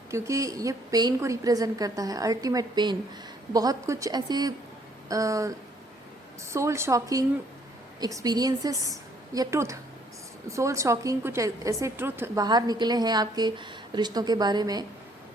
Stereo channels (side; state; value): both; normal; correlation 0.64